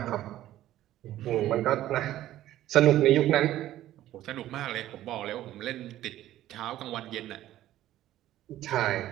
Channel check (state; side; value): quieter; left; 13.7 dB